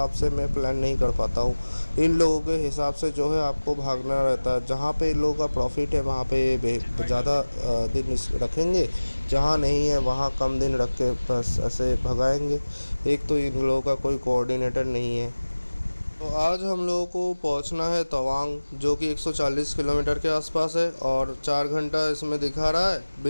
से मैं प्लान नहीं कर पाता हूँ। इन लोगों के हिसाब से जो है आपको भागना रहता है। जहाँ पे इन लोगों का प्रॉफिट है वहाँ पे ज़्यादा दिन रखेंगे, जहाँ नहीं है वहाँ कम दिन रख के बस ऐसे भगाएंगे। एक तो इन लोगों का कोई कोऑर्डिनेटर नहीं है। तो आज हम लोगों को पहुंचना है तवांग, जो कि 140 किलोमीटर के आसपास है, और 4 घंटा इसमें दिखा रहा है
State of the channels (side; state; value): both; inverted; correlation -1.00